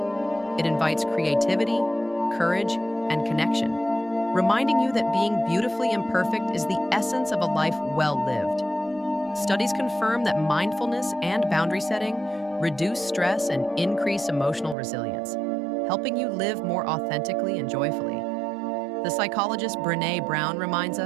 It invites creativity, courage, and connection, reminding you that being beautifully imperfect is the essence of a life well lived. Studies confirm that mindfulness and boundary setting reduce stress and increase emotional resilience, helping you live more authentically and joyfully. The psychologist Brené Brown reminds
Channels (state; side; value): drops out; left; at 14.8 s